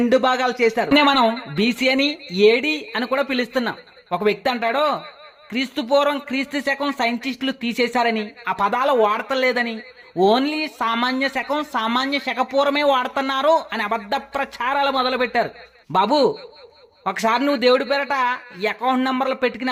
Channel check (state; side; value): identical; both; correlation 1.00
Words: భాగాలు చేశారు. మనం బీసీ అని ఏడి అని కూడా పిలుస్తున్నాం. ఒక వ్యక్తి అంటాడు క్రీస్తు పూర్వం క్రీస్తు శకం సైంటిస్టులు తీసేశారని, ఆ పదాలు వాడతలేదని, ఓన్లీ సామాన్య శకం సామాన్య శకపూర్వమే వాడుతున్నారు అని అబద్ధ ప్రచారాలు మొదలుపెట్టారు. బాబు, ఒకసారి నువ్వు దేవుడి పేరట అకౌంట్ నెంబర్లు